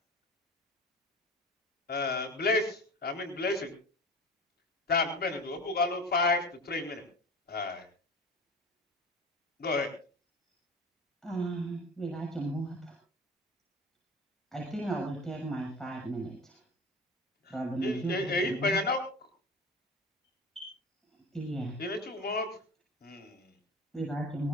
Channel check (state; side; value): normal; both; correlation 0.34